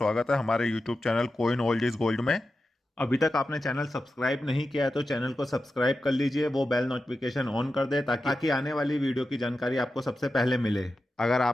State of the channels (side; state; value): both; normal; correlation 0.91